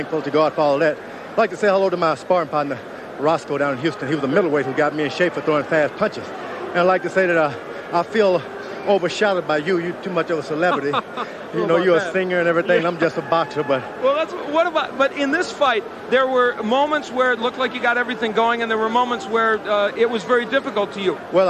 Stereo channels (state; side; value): identical; both; correlation 1.00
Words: to God for all that. I'd like to say hello to my sparring partner, Roscoe, down in Houston. He was a middleweight who got me in shape for throwing fast punches. And I'd like to say that I feel overshadowed by you. You're too much of a celebrity. You know, you're a singer and everything. Yeah. I'm just a boxer, but... Well, but in this fight, there were moments where it looked like you got everything going, and there were moments where it was very difficult to you. Well,